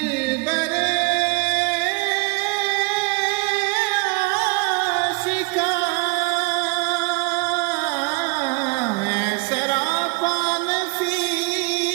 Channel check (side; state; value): left; quieter; 28.0 dB